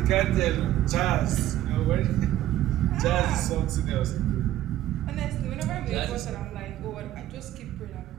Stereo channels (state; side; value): quieter; left; 13.5 dB